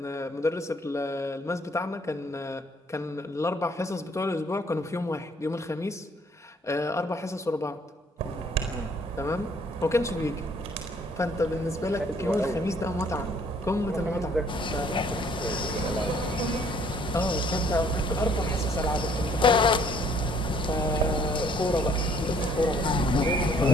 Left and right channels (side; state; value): both; normal; correlation 0.61